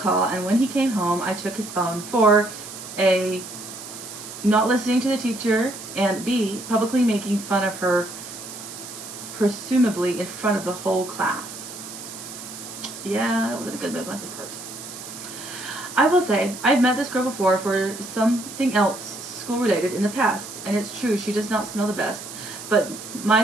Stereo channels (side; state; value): right; noise; hiss, 12 dB below the sound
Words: call, and when he came home, I took his phone for A, not listening to the teacher, and B, publicly making fun of her, presumably in front of the whole class. Yeah, that wasn't a good move on his part. I will say, I've met this girl before for something else school-related in the past, and it's true, she does not smell the best, but my